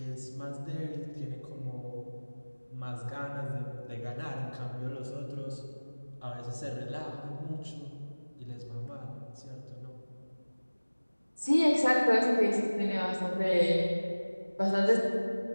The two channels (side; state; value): both; inverted; correlation -1.00